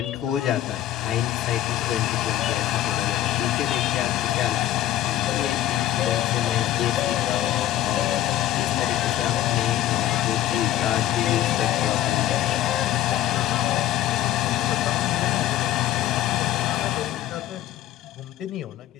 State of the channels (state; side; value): quieter; right; 13.1 dB